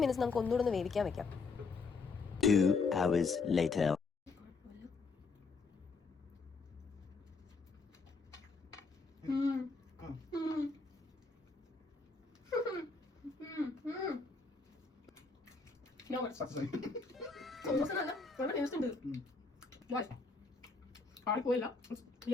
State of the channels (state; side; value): quieter; right; 4.3 dB